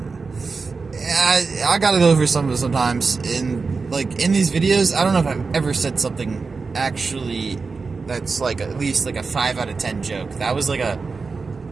I gotta go over some of it sometimes. In these videos, I don't know if I've ever said something actually that's like at least like a 5 out of 10 joke. That was like a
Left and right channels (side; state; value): left; quieter; 4.5 dB